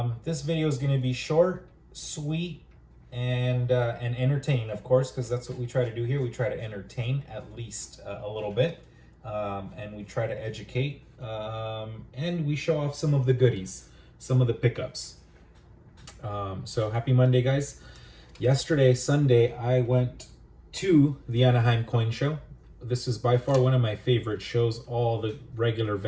This video is going to be short, sweet, and entertaining, of course, because that's what we try to do here. We try to entertain at least a little bit, and we try to educate, and we show off some of the goodies, some of the pickups. So happy Monday, guys. Yesterday, Sunday, I went to the Anaheim Coin Show. This is by far one of my favorite shows. All the regular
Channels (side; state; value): both; identical; correlation 1.00